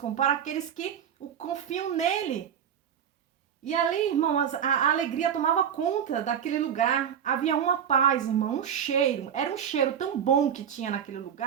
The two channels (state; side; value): quieter; left; 8.7 dB